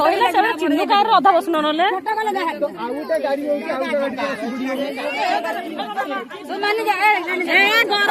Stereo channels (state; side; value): identical; both; correlation 1.00